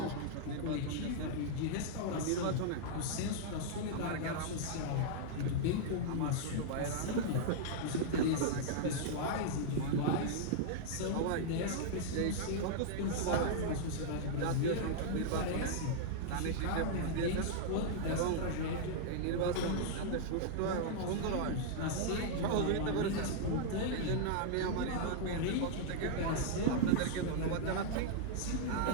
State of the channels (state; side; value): different; both; correlation -0.01